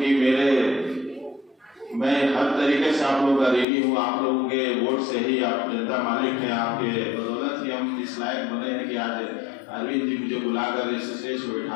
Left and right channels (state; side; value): drops out; right; at 3.7 s